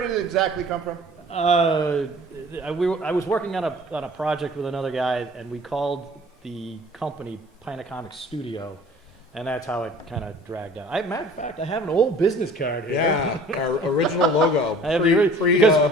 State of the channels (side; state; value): both; normal; correlation 0.48